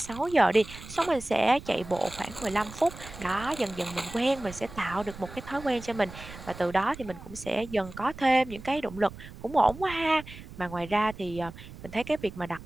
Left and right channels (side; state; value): right; noise; rumble, 15 dB below the sound